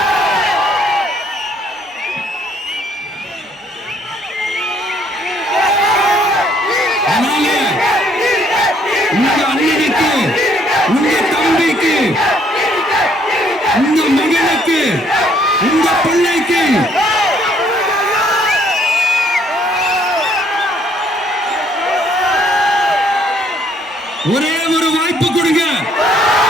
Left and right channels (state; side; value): normal; both; correlation 0.66